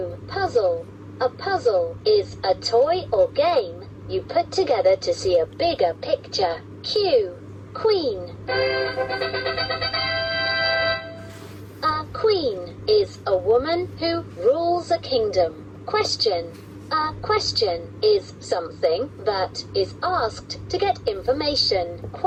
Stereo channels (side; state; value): both; identical; correlation 1.00